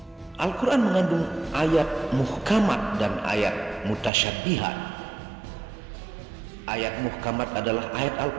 Al-Quran mengandung ayat muhkamat dan ayat mutasyabihat. Ayat muhkamat adalah ayat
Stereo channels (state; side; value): drops out; left; at 4.1 s